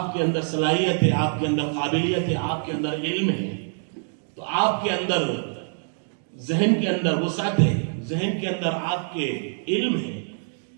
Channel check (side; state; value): left; silent; digital silence